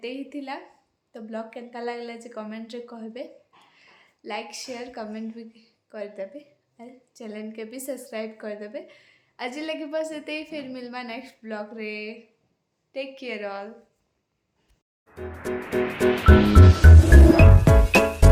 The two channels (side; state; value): both; identical; correlation 1.00